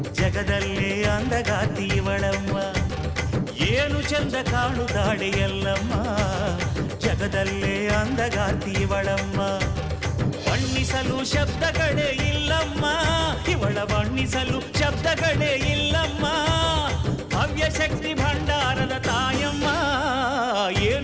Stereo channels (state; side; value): identical; both; correlation 1.00